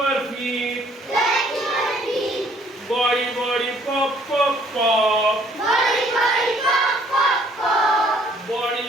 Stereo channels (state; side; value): normal; both; correlation 0.61